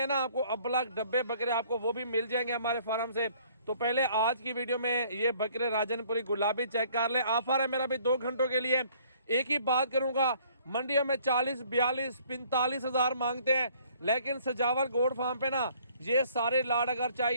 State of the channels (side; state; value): both; inverted; correlation -0.59